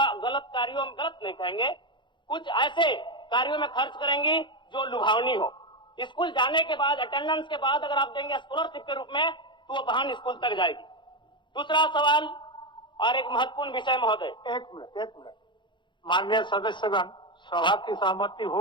गलत कार्यों में, गलत नहीं कहेंगे, कुछ ऐसे कार्यों में खर्च करेंगी जो लुभावनी हो। स्कूल जाने के बाद, अटेंडेंस के बाद अगर आप देंगे स्कॉलरशिप के रूप में तो वो बहन स्कूल तक जाएगी। दूसरा सवाल और एक महत्वपूर्ण विषय महोदय। एक मिनट माननीय सदस्यगण, सभा की सहमति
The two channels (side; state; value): right; late; 0.23 ms